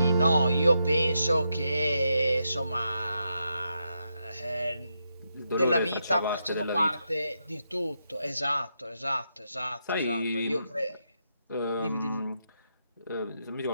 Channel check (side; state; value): both; inverted; correlation -0.83